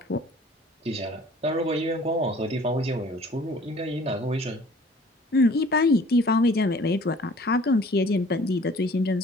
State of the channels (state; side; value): normal; both; correlation 0.51